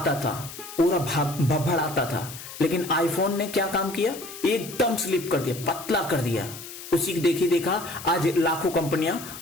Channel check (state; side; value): noise; left; hiss, 13 dB below the sound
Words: था, पूरा भभड़ आता था। लेकिन आईफोन ने क्या काम किया, एकदम स्लिप कर दिया, पतला कर दिया, उसी की देखी देखा आज लाखों कंपनियां